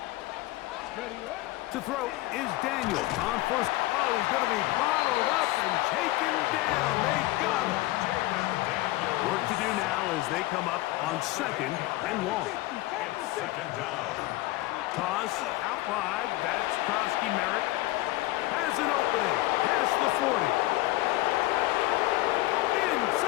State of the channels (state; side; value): quieter; right; 18.6 dB